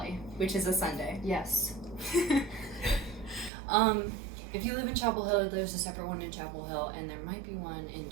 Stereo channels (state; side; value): drops out; left; at 3.5 s